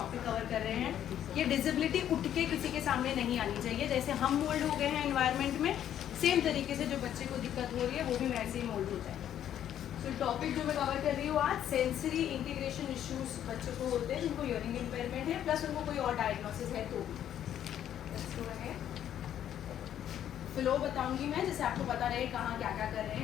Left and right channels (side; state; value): right; quieter; 10.6 dB